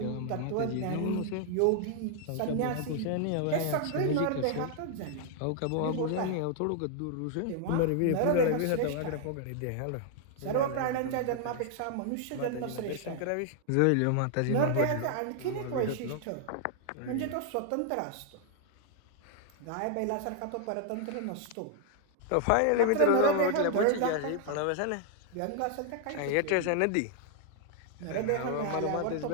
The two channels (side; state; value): both; different; correlation 0.00